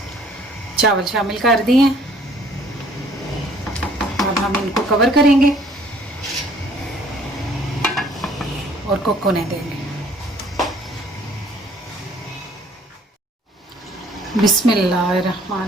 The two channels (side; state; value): both; normal; correlation 0.58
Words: चावल शामिल कर दिए हैं। अब हम इनको कवर करेंगे और कुक होने देंगे।